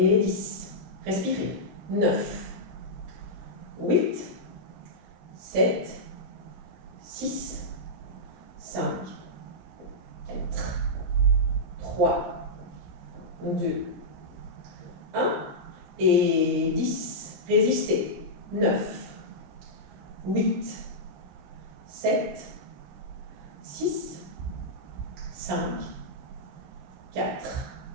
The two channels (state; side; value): late; left; 16 ms